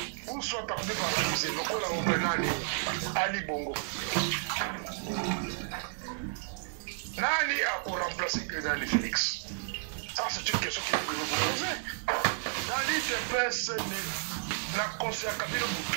Ou soit par des paralysés, le kola obenani Ali Bongo. Nani a pour remplacer Dali Félix? Ça, c'est une question que vous vous posez. Dali Félix, la conseillère Kabila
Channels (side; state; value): left; silent; digital silence